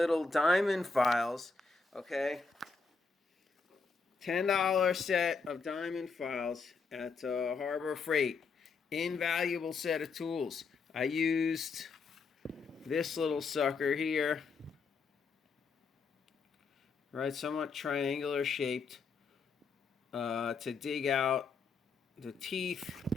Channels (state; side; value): quieter; right; 4.6 dB